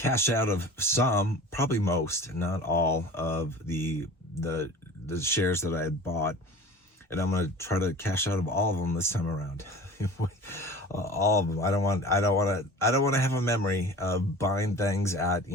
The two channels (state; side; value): normal; both; correlation 0.40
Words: out of some, probably most, not all of the shares that I had bought. And I'm going to try to cash out of all of them this time around. All of them. I don't want to have a memory of buying things at,